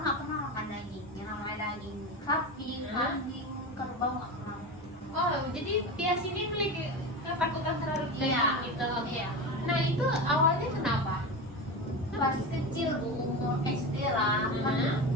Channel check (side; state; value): both; normal; correlation 0.23